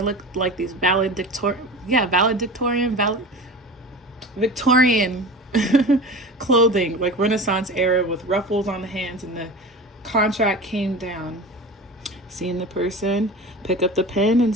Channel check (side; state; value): both; normal; correlation 0.33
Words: like these Victorian clothing, like Renaissance era with ruffles on the hands, and the contract came down. Seeing the person pick up the pen and